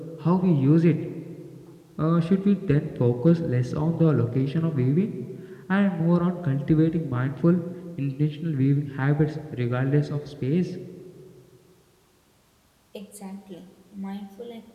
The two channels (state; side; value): identical; both; correlation 1.00